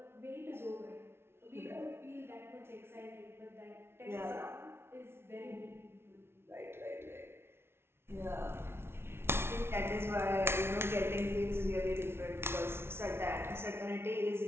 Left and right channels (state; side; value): late; left; 0.12 ms